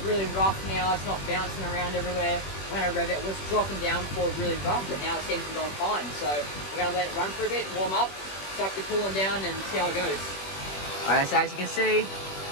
really rough now. It's not bouncing around everywhere. When I rev it, it was dropping down before really rough, but now it seems to be going fine. So we're going to let it run for a bit, warm up, suck the coolant down, and see how it goes. Alright, so as you can see,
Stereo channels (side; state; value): right; late; 21 ms